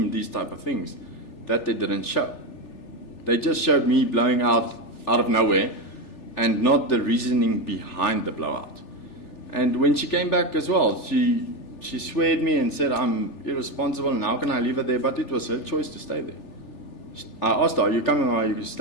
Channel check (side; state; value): right; late; 3.4 ms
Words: these type of things that they didn't show. They just showed me blowing out of nowhere and not the reasoning behind the blowout. And when she came back as well, she sweared me and said, I'm irresponsible and how can I leave her there? But it was her choice to stay there. I asked her, are you coming or are you